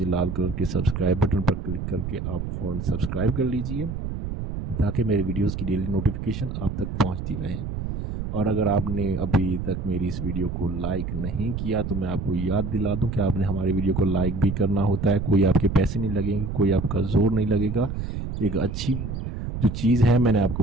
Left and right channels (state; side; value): noise; right; rumble, 5 dB below the sound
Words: लाल कलर के सब्सक्राइब बटन पर क्लिक करके आप फ़ौरन सब्सक्राइब कर लीजिए, ताकि मेरे वीडियोस की डेली नोटिफिकेशन आप तक पहुंचती रहे। और अगर आपने अभी तक मेरी इस वीडियो को लाइक नहीं किया तो मैं आपको याद दिला दूं कि आपने हमारे वीडियो को लाइक भी करना होता है। कोई आपके पैसे नहीं लगेंगे, कोई आपका जोर नहीं लगेगा। एक अच्छी जो चीज़ है मैंने आपको